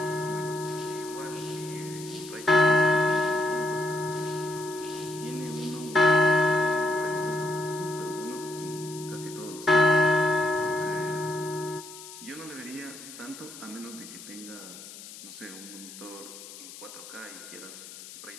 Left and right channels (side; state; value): left; noise; hiss, 15 dB below the sound